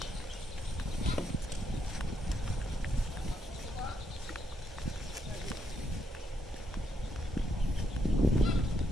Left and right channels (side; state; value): both; normal; correlation 0.77